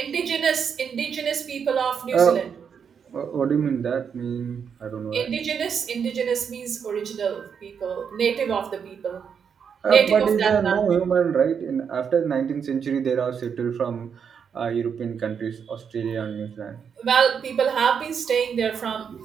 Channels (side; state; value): left; quieter; 7.0 dB